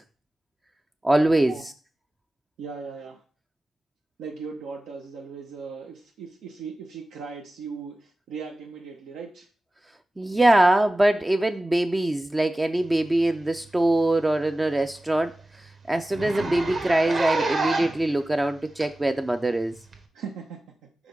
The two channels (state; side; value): normal; both; correlation 0.96